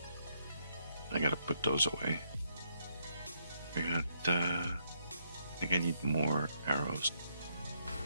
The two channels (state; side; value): inverted; both; correlation -0.74